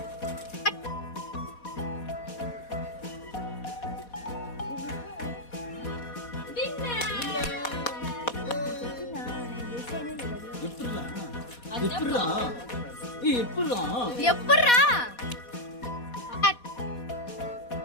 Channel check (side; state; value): right; late; 4.1 ms